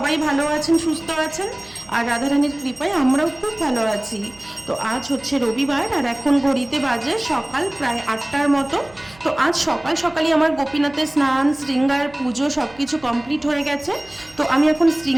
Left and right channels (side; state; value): right; noise; hum, 25 dB below the sound